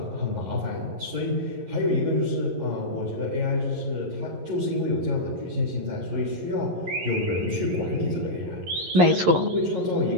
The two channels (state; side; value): late; left; 11 ms